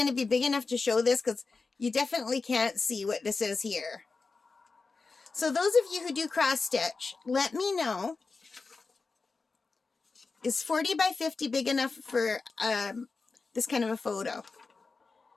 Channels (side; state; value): right; quieter; 4.2 dB